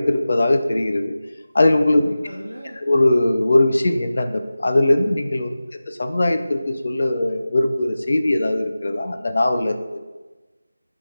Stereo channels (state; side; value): inverted; both; correlation -0.96